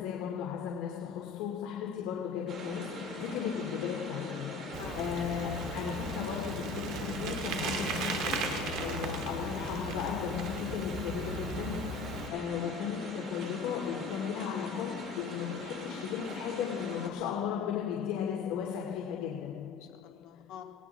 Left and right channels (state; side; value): quieter; right; 4.1 dB